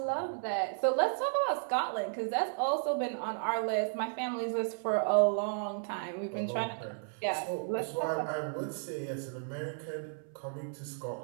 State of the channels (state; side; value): silent; left; 55 dB below the other